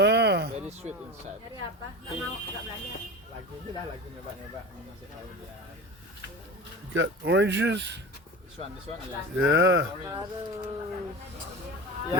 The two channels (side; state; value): both; normal; correlation 0.30